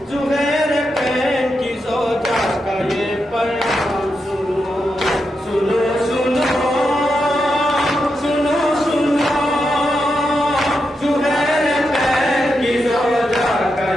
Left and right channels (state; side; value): normal; both; correlation 0.86